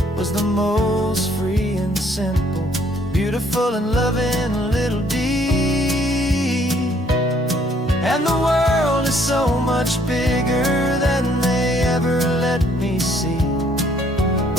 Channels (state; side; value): normal; both; correlation 0.64